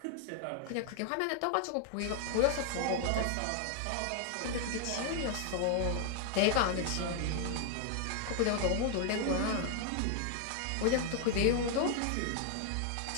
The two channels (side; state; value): both; different; correlation 0.00